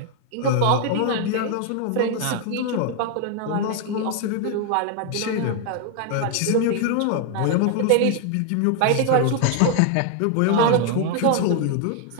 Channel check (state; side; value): different; both; correlation 0.00